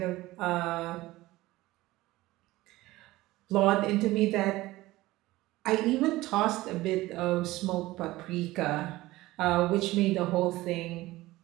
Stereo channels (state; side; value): quieter; left; 18.2 dB